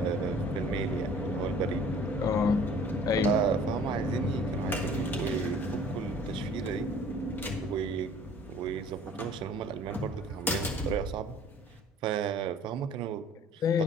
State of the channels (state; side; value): normal; both; correlation 0.51